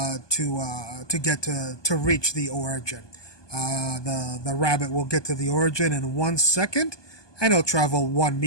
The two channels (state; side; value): late; right; 1.2 ms